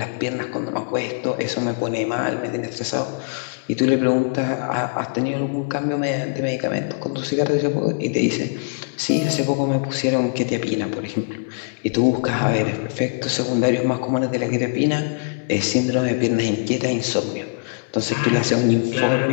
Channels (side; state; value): right; quieter; 35.0 dB